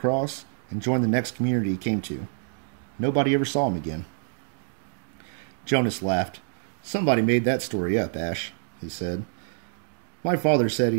and joined the next community he came to. Nobody ever saw him again." Jonas laughed. "Somebody made that story up, Ash," he said. "My father said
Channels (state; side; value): silent; left; digital silence